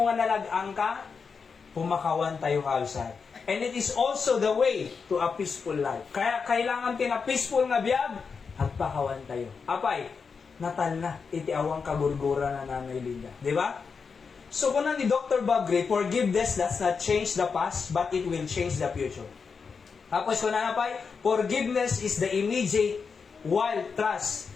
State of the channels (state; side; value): quieter; right; 5.5 dB